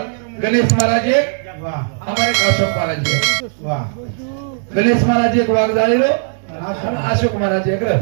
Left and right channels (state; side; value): silent; left; digital silence